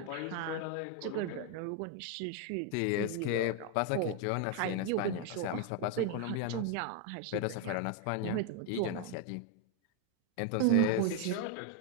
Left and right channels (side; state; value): both; different; correlation 0.01